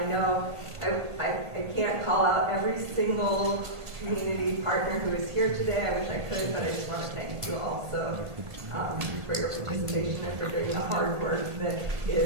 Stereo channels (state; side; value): late; left; 1.6 ms